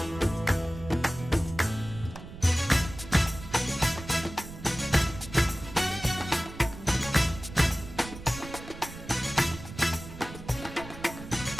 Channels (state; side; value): noise; right; rumble, 13 dB below the sound